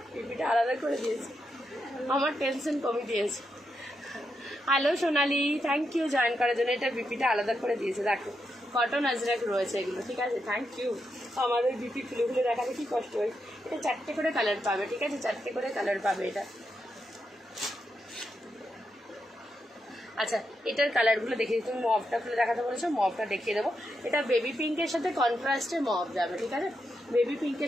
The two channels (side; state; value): both; normal; correlation 0.84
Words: পিপিটা আলাদা করে দিয়েছে, আমার টেনশন কমে দিয়েছে। Hello Sonali, thank you join করার জন্য। এটা বিপিটা আলাদা করে দিয়েছে, দেখো কটন আজরাক রয়েছে এগুলো, ঠিক আছে, থ্যাংক ইউ। আমাদের বিপি খুলে খুলে দেখাতে কি কষ্ট হয়। এটা 4টে করে কালার পাবে, ঠিক আছে, 4টে করে কালার পাবে এটা। আচ্ছা, এটার কালারগুলো দেখিয়ে দিই, তুমি মভটা খুলে দেখাতে বলেছো, মভটা দেখিয়ে দেবো। এটা বেবি পিঙ্কের সাথে কন্ট্রাস্টে মভ যাবে, ঠিক আছে, বেবি